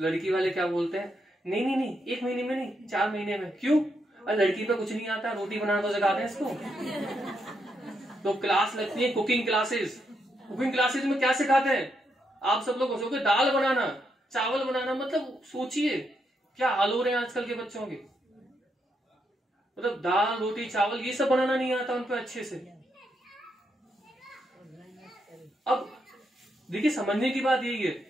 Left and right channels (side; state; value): both; normal; correlation 0.80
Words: वाले क्या बोलते हैं? नहीं नहीं नहीं, 1 महीने में नहीं, 4 महीने में। क्यों? अरे लड़की पे कुछ नहीं आता, रोटी बनाना तो सिखाते हैं इसको। तो क्लास लगती है कुकिंग क्लासेस। कुकिंग क्लासेस में क्या सिखाते हैं? आप सब लोग सोचोगे दाल बनाना, चावल बनाना, मतलब सोचिए क्या हाल हो रहे हैं आजकल के बच्चों के। मतलब दाल रोटी चावल ये सब बनाना नहीं आता उनको अच्छे से। अब देखिए समझने की बात यही है,